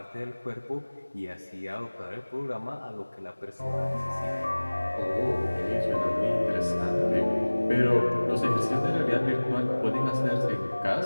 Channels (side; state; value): both; inverted; correlation -1.00